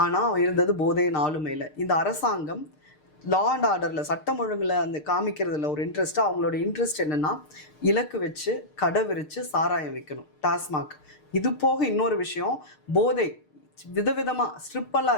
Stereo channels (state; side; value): late; right; 6.6 ms